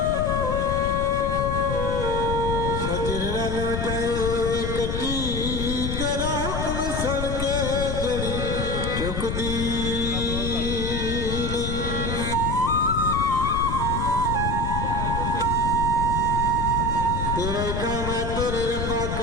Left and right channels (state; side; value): noise; left; rumble, 2 dB below the sound